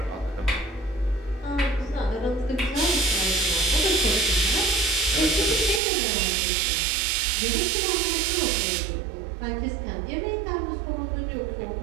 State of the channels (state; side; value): drops out; left; at 5.8 s